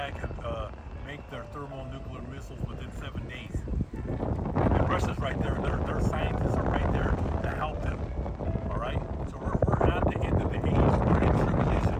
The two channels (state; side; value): identical; both; correlation 1.00